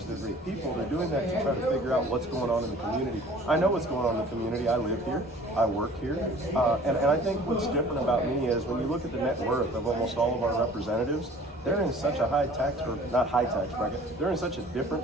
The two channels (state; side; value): normal; both; correlation 0.49